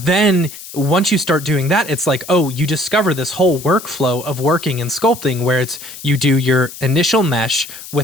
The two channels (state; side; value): noise; left; hiss, 14 dB below the sound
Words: once you start doing that, it's like, oh, you discover this whole workflow of working in sculpting where it's you do your initial mesh